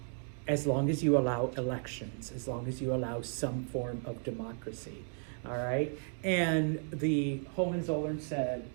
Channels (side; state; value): left; silent; 55 dB below the other